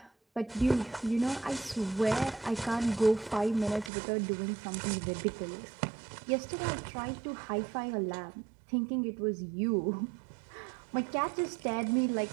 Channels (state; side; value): drops out; left; at 3.9 s